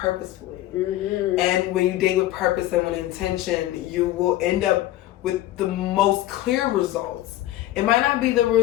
Mm-hmm. And when you date with purpose and with intention, you will end up with the most clear results. It might not be the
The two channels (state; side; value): quieter; right; 15.0 dB